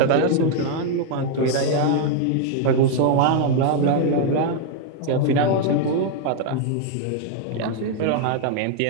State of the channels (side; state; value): both; different; correlation 0.00